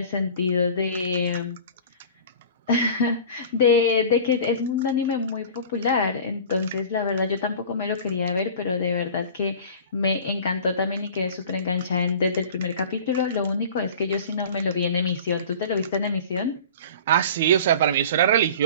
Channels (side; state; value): both; inverted; correlation -0.40